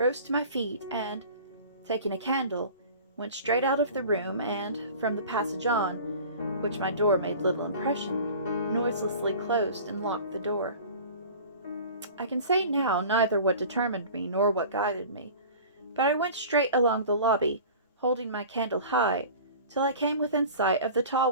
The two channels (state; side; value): inverted; both; correlation -0.41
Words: to my feet, and, taking a candle, went straight out of the room, and, from the passage on, which my door made little impression, noiselessly closed and locked the door. I can say now neither what determined me nor what guided me, but I went straight along the lobby, holding my candle high, till I came within sight of the tall